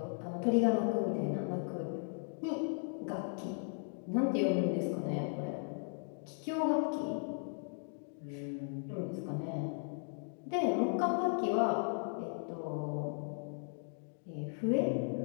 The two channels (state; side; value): silent; right; 53 dB below the other